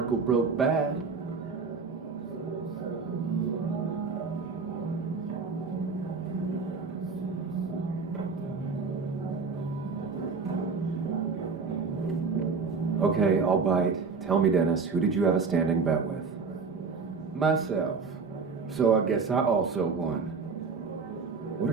broke bad. Okay, I'll bite. Tell me, Dennis, who did you have a standing bet with? Myself. So I guess I also won. What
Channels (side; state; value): left; quieter; 4.9 dB